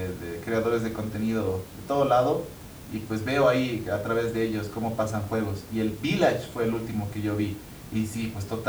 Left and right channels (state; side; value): identical; both; correlation 1.00